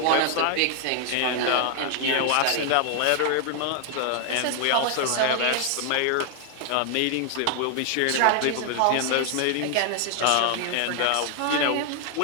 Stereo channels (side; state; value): both; different; correlation 0.00